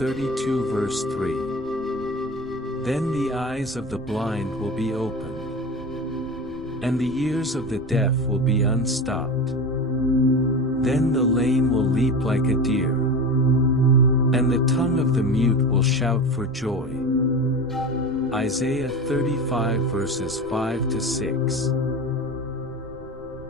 verse 3. Then the eyes of the blind will be opened, and the ears of the deaf will be unstopped. Then the lame will leap like a deer, and the tongue of the mute will shout for joy. Isaiah 35 verses 5 to 6.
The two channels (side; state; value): right; noise; rumble, 19 dB below the sound